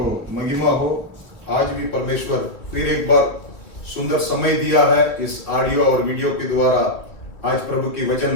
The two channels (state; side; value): late; right; 3.3 ms